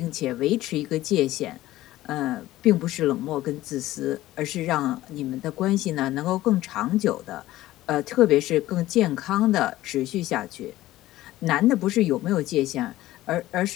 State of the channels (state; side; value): quieter; right; 15.8 dB